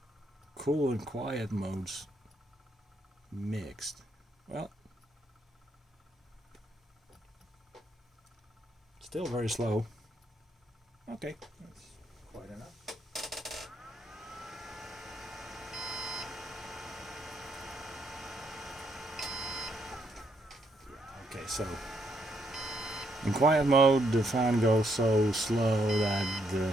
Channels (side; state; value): both; normal; correlation 0.75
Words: cool and quiet modes mixed. Well, still very slow. Okay, that's quite enough. Okay, so in quiet mode, the fan goes so slow that